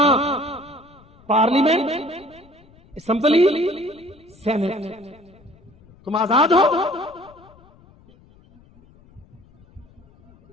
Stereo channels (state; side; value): noise; left; rumble, 27 dB below the sound